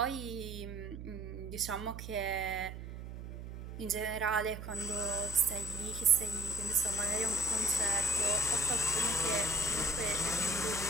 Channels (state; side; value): noise; right; hum, 10 dB below the sound